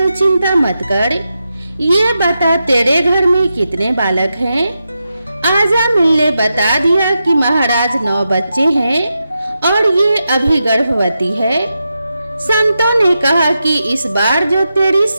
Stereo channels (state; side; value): inverted; both; correlation -0.88